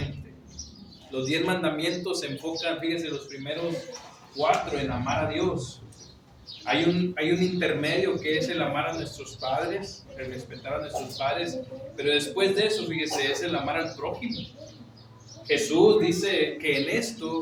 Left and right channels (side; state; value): both; identical; correlation 1.00